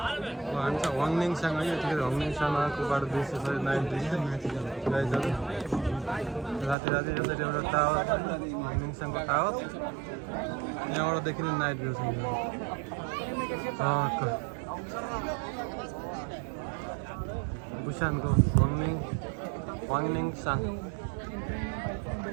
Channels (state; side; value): drops out; left; at 6.8 s